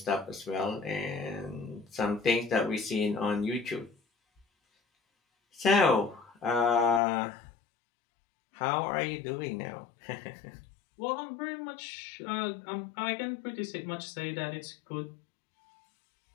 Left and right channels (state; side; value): drops out; right; at 7.0 s